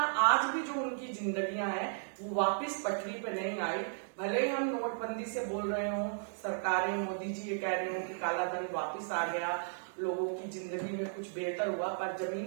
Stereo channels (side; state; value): left; silent; digital silence